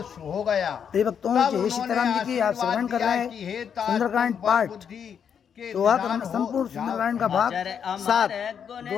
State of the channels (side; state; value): right; quieter; 7.7 dB